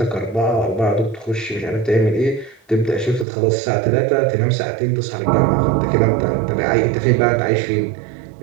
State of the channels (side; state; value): left; drops out; at 3.2 s